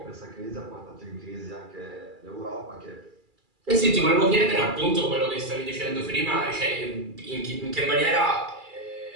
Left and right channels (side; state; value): left; late; 2.3 ms